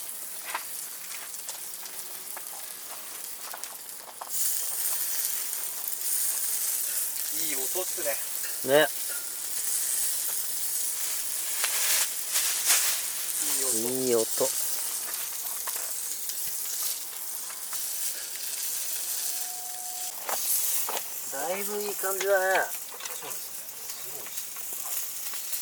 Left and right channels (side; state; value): both; identical; correlation 1.00